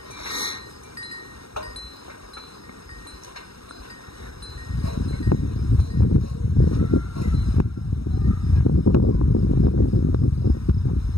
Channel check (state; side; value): late; right; 0.76 ms